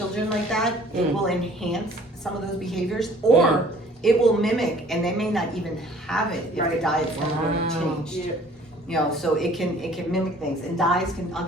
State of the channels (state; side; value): normal; both; correlation 0.53